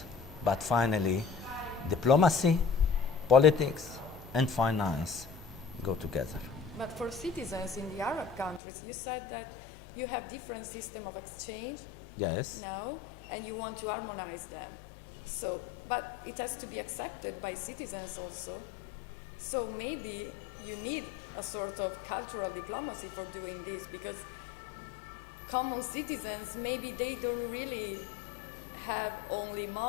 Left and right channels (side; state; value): right; drops out; at 8.6 s